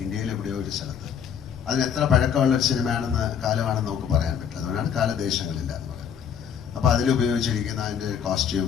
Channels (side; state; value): right; quieter; 7.9 dB